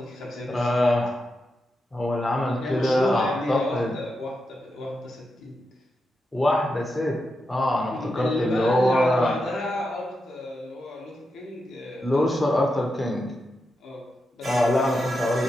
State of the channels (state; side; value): normal; both; correlation 0.87